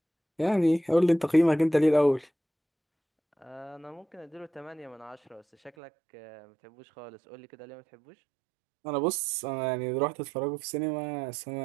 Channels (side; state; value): left; drops out; at 5.7 s